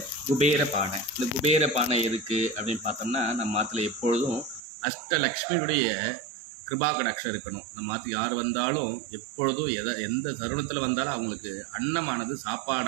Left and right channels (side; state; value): left; drops out; at 4.6 s